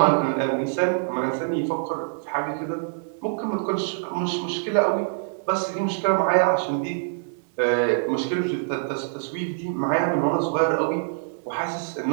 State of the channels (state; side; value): silent; left; digital silence